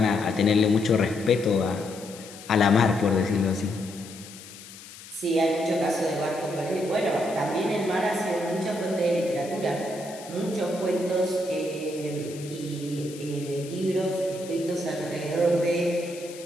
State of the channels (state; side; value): noise; left; hiss, 17 dB below the sound